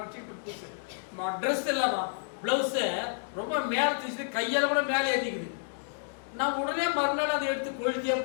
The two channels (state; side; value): silent; right; digital silence